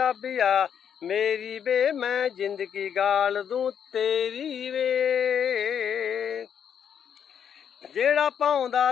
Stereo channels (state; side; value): quieter; right; 8.2 dB